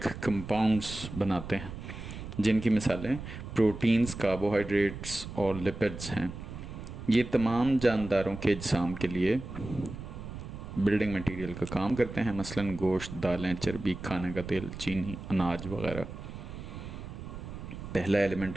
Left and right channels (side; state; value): right; noise; rumble, 10 dB below the sound